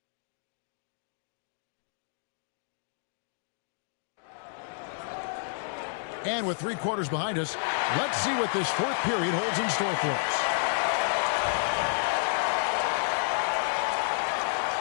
And with 3 quarters behind us, let's see what this fourth period holds in store for us.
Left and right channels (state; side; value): silent; right; digital silence